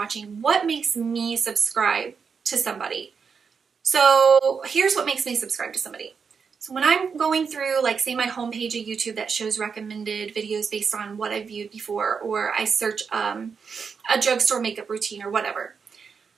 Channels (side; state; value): left; quieter; 5.9 dB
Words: what makes me subscribe to somebody? So here's what makes me subscribe to somebody. So when I'm going through, like, say my homepage of YouTube that shows recommended videos based on what I've viewed before, or I search a drugstore makeup routine or whatever,